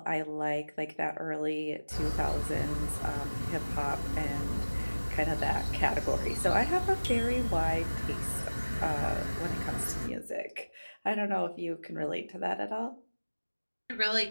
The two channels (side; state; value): both; inverted; correlation -1.00